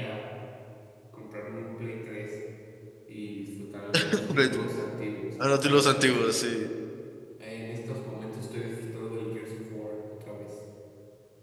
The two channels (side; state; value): both; identical; correlation 1.00